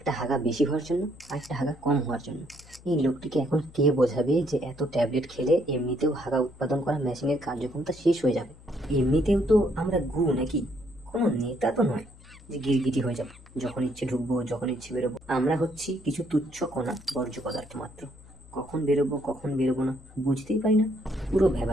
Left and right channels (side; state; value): left; noise; hum, 22 dB below the sound